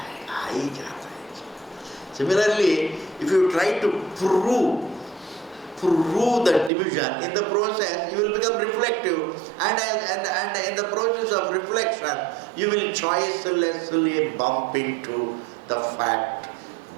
Similarly, if you try to prove the division, in the process you will become reflective, and in the process of reflection you will choicelessly bump into the fact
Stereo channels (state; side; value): drops out; left; at 6.7 s